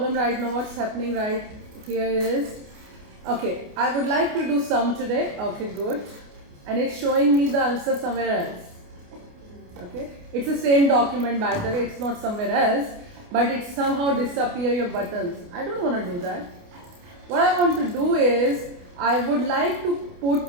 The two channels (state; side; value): late; left; 28 ms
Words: right now. What's happening right here is, okay, I would like to do sum today. Okay, good. And it's showing me the answer somewhere else. Okay, it's the same document by the way, it's not somewhere else, but it somehow disappear your buttons. I don't want to do that. What I want to do is, I would like to